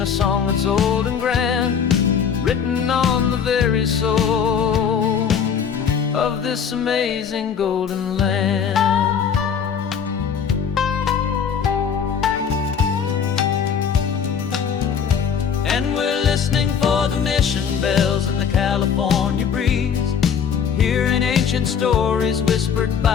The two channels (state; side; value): quieter; right; 7.3 dB